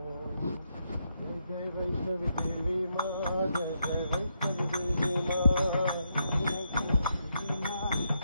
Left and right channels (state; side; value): inverted; both; correlation -0.80